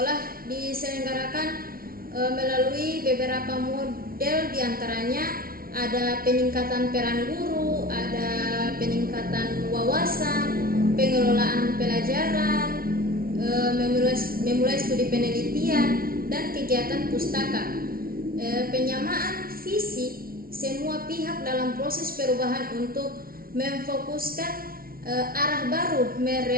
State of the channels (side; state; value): left; late; 0.43 ms